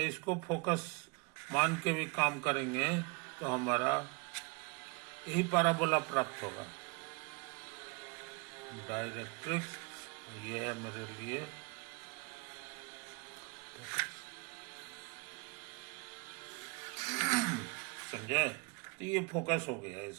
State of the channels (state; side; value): quieter; left; 30.9 dB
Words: इसको फोकस मान के भी काम करेंगे तो हमारा यही पैराबोला प्राप्त होगा। डायरेक्ट्रिक्स ये है मेरे लिए समझे? तो ये फोकस हो गया